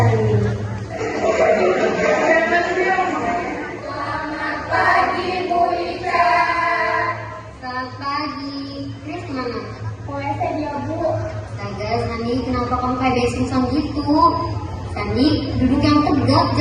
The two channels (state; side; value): identical; both; correlation 1.00